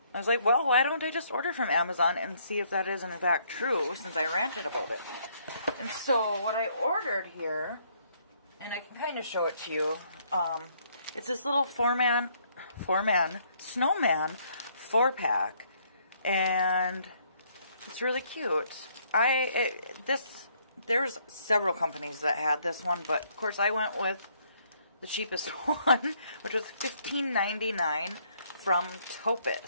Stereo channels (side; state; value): both; inverted; correlation -0.67